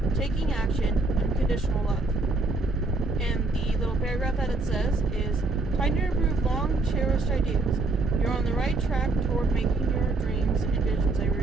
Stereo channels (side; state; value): left; quieter; 3.2 dB